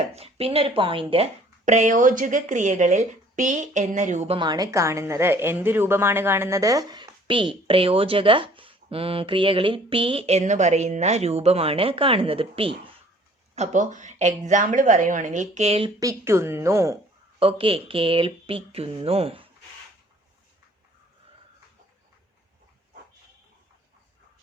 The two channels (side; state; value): both; normal; correlation 0.55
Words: പിന്നെ ഒരു പോയിന്റ്, പ്രയോജക ക്രിയകളിൽ പി എന്ന രൂപമാണ് കാണുന്നത്. എന്ത് രൂപമാണ് കാണുന്നത്? പി. പ്രയോജക ക്രിയകളിൽ പി എന്ന് പറയുന്ന രൂപമാണ് കാണുന്നത്, പി. അപ്പോൾ എക്സാമ്പിൾ പറയുവാണെങ്കിൽ, കേൾപ്പിക്കുന്നു. ഓക്കെ, കേൾപ്പിക്കുന്നു.